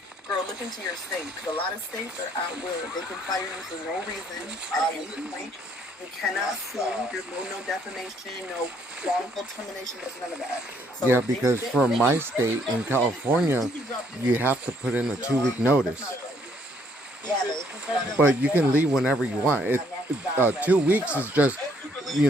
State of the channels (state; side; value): normal; both; correlation 0.67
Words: girl, look into your state because a lot of states are out will. They can fire you for no reason at any point. You cannot sue. There's no defamation, no wrongful termination. There's none of that. So Yeah, because for my state in California, you have to put in a 2-week notice. Yeah, But you can leave whenever you want. 2 weeks is just,